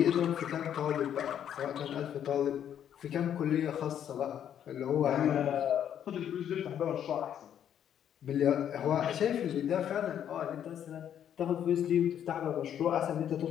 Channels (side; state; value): right; quieter; 9.6 dB